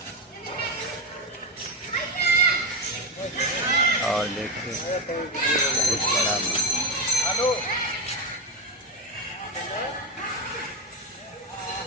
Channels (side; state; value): both; normal; correlation 0.13